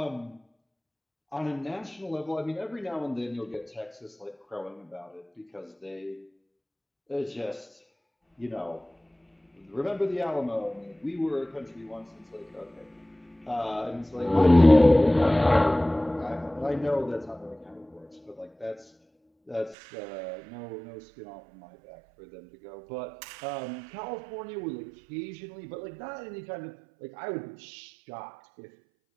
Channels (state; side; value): drops out; left; at 19.8 s